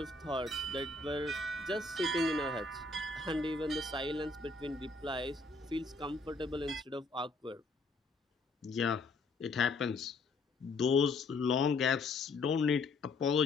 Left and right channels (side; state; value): right; quieter; 3.5 dB